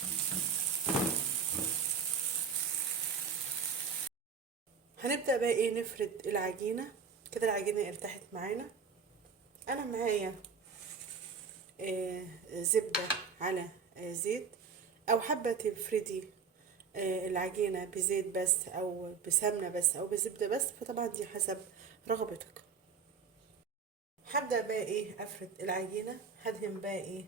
هنبدأ بقى ايه نفرد العجينة. كده العجينة ارتاحت معانا. انا معايا زبدة على زيت، او حابة تفردي العجينة بزيت بس او بسمنة بس او بزبدة بس، فطبعا دي حسب رغبتك. هبدأ بقى ايه افرد العجينة. هدهن بقى ايه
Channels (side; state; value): left; quieter; 5.9 dB